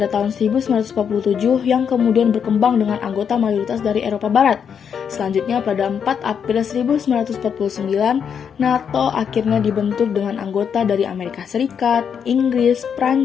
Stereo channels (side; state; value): right; quieter; 7.4 dB